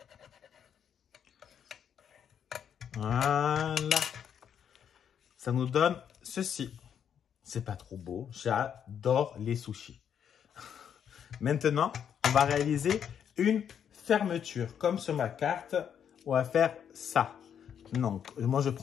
Voilà. Ça nous donne ceci. C'est pas trop beau. J'adore les sushis. Maintenant, on va réaliser une fermeture. Comme sur ma carte, on va faire ça. Donc, moi, je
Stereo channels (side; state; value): right; quieter; 8.4 dB